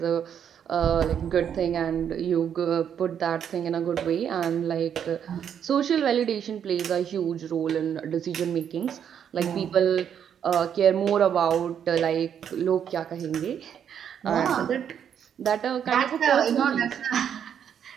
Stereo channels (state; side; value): quieter; left; 8.6 dB